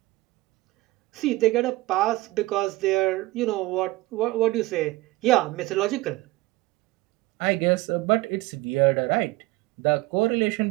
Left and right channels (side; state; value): left; quieter; 19.6 dB